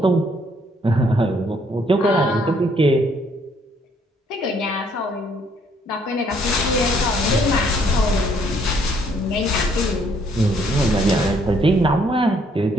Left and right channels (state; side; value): normal; both; correlation 0.66